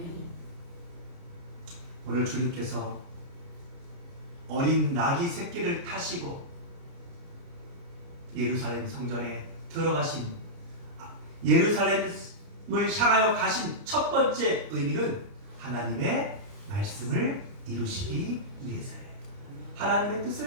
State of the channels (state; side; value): late; left; 29 ms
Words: 오늘 주님께서 어린 나귀 새끼를 타시고 예루살렘 성전에 들어가신, 예루살렘을 향하여 가신 첫 번째 의미는 하나님의 말씀을 이루시기 위해서예요. 하나님의